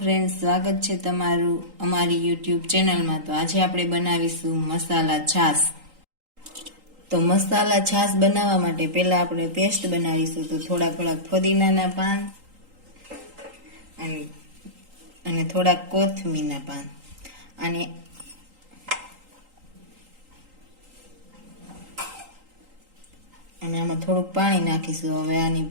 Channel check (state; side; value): late; left; 3.8 ms